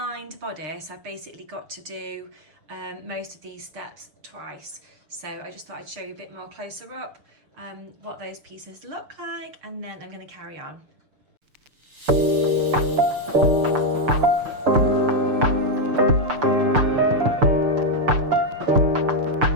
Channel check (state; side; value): late; left; 6.6 ms